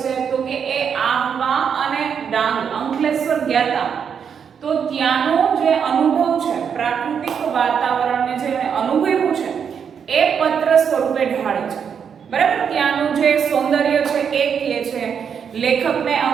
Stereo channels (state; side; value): quieter; left; 7.3 dB